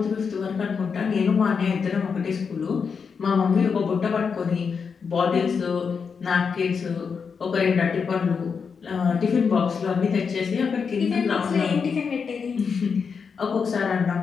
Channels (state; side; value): quieter; right; 5.9 dB